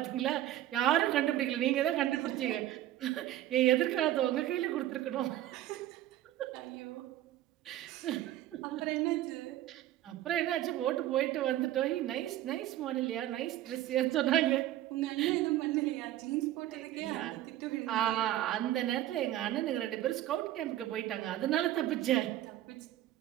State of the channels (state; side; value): quieter; left; 13.7 dB